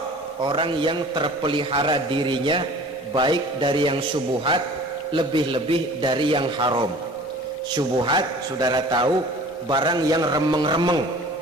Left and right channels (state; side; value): normal; both; correlation 0.45